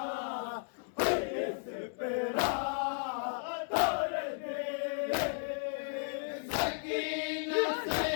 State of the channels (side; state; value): right; silent; 55 dB below the other